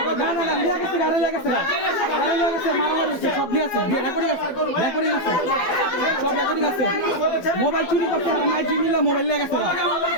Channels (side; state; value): right; late; 12 ms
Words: না না না নিয়ে গেছে গাড়ি লাগেছে মারামারি সব নিয়ে আছে রেকর্ডিং আছে সব রেকর্ডিং আছে মোবাইল চুরি করতে আমার জিনিলা মোবাইল নিয়ে গেছে